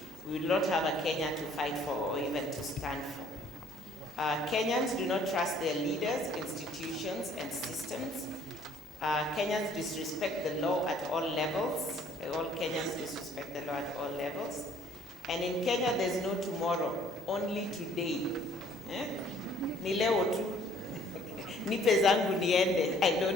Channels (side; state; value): both; normal; correlation 0.59